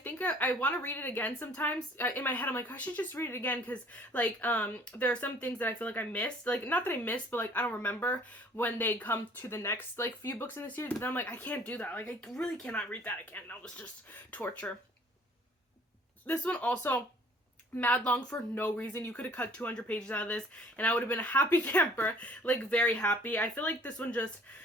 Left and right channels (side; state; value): both; normal; correlation 0.54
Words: I want to read it again sometimes. In my head, I'm like, I should just read it again, because, like, there are some things that I feel like I missed, like, not that I missed, but, like, I don't remember when they come to the next, like, few books in the series, but then I'm like, I can't do that, like, I really cannot read that again. That was just torture. This one also mad long for no reason. You could have cut 200 pages out of this and I would have been a happy camper, like, very happy. I feel like this one just